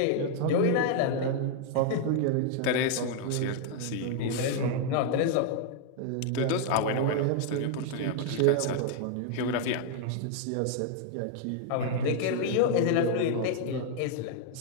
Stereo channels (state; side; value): different; both; correlation 0.00